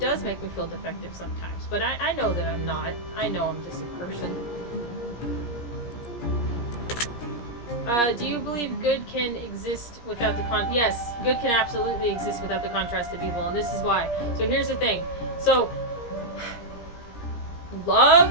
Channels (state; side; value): late; right; 17 ms